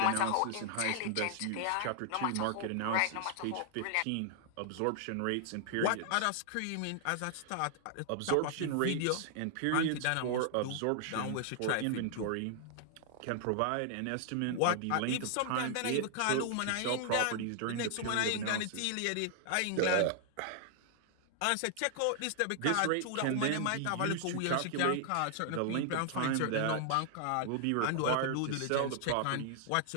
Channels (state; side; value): different; both; correlation 0.00